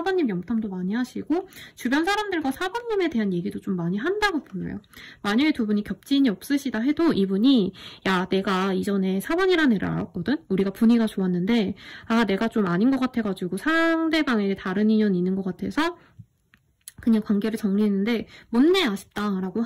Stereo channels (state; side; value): identical; both; correlation 1.00